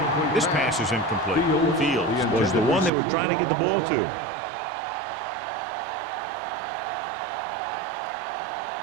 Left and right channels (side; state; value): left; drops out; at 2.9 s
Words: This pass is incomplete. Fields was the one they were trying to get the ball to.